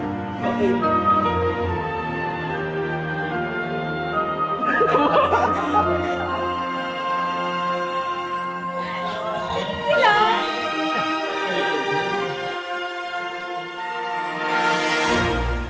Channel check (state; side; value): identical; both; correlation 1.00